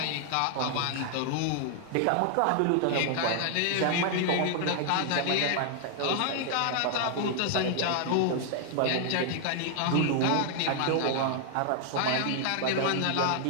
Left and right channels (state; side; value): different; both; correlation 0.00